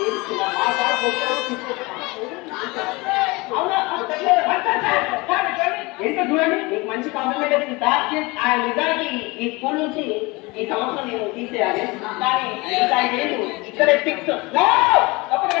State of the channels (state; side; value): quieter; right; 24.4 dB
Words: మా సార్ ఏంటో చూడండి మీకు మంచి కాంప్లిమెంట్ వచ్చింది సార్. ఆ నిజానికి ఈ స్కూల్ నుంచి ఈ సంవత్సరం నేను తీసేయాలి కానీ ఇంకా 5 ఏళ్ళు ఇక్కడే fix.